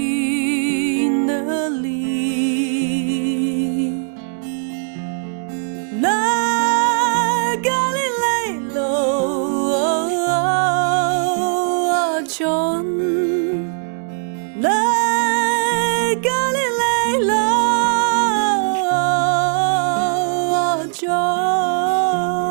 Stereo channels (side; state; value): left; silent; digital silence